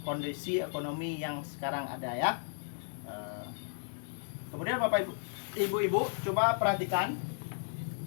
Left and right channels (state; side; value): silent; right; digital silence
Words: kondisi ekonomi yang sekarang ada ya. Kemudian Bapak Ibu, coba perhatikan